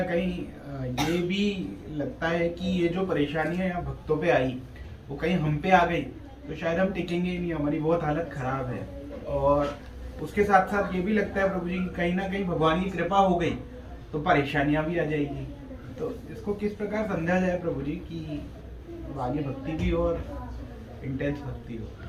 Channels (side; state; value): both; identical; correlation 1.00